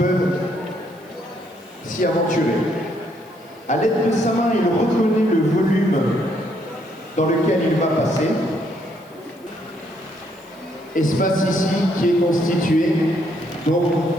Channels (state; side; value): noise; right; hiss, 30 dB below the sound